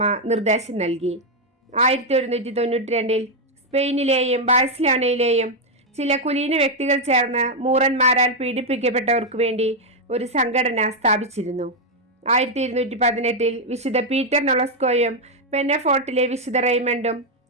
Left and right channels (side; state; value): both; normal; correlation 0.01